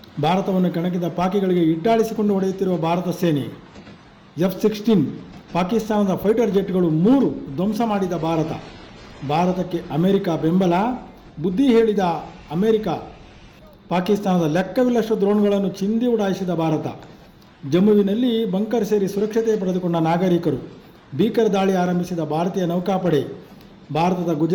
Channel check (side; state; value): both; identical; correlation 1.00